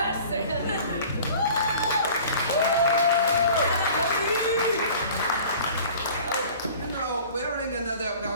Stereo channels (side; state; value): both; inverted; correlation -0.45